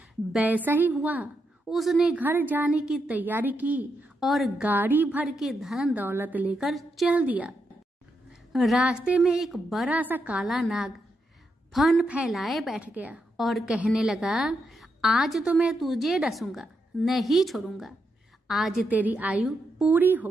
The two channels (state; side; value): normal; both; correlation 0.83